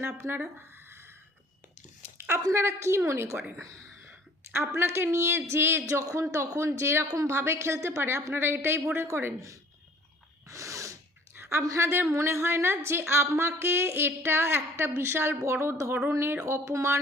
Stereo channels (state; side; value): normal; both; correlation 0.53